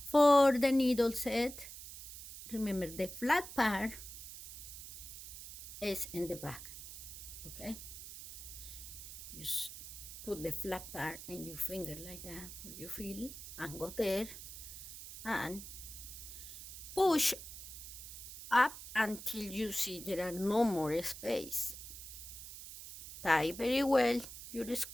for the needle set, remember the flat part is in the back. Okay, just put the flat part in your finger like that, you feel, and go there and push up until you see there are no more space. Tie very well your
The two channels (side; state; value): right; noise; hiss, 12 dB below the sound